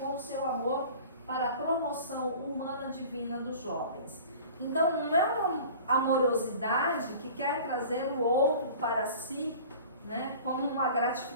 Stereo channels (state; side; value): inverted; both; correlation -0.42